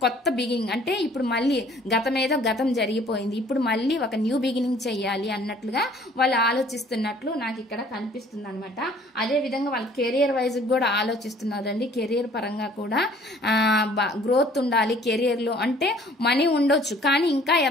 కొత్త బిగినింగ్. అంటే ఇప్పుడు మళ్ళీ గతం జరిగిపోయింది, ఇప్పుడు మళ్ళీ ఒక న్యూ బిగినింగ్ చెయ్యాలి అన్నట్లుగా వాళ్ళు ఆలోచిస్తున్నట్లు నాకు ఇక్కడ కనిపిస్తుంది అనమాట. అదే విధంగా వాళ్ళ కెరియర్ వైజ్ కూడా ఆలోచిస్తున్నారండి. కెరియర్ పరంగా కూడా గ్రోత్ ఉండాలి కెరియర్ లో. అంటే మనీ ఉండొచ్చు కానీ ఇంకా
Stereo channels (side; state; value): both; normal; correlation 0.55